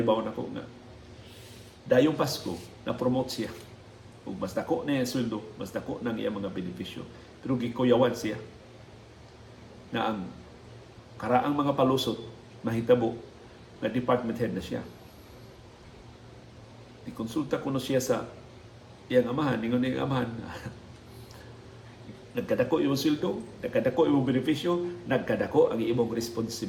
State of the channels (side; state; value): both; identical; correlation 1.00